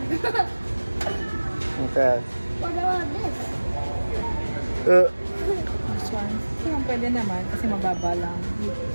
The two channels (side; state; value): both; inverted; correlation -1.00